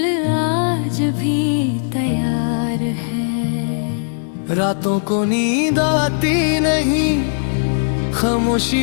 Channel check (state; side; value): silent; right; digital silence